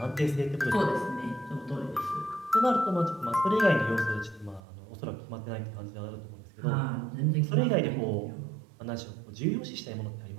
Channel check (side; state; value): left; drops out; at 4.6 s